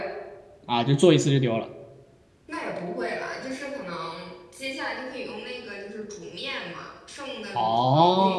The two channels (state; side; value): identical; both; correlation 1.00